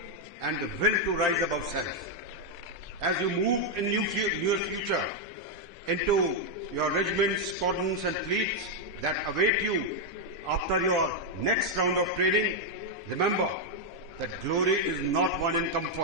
and the will to rise above self. As you move in your future into your regiments, squadrons and fleets that await you after your next round of training, remember that glory is not won in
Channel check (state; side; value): normal; both; correlation 0.00